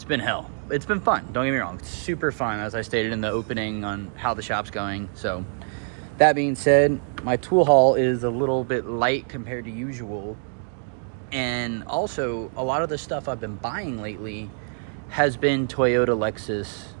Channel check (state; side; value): silent; left; 62 dB below the other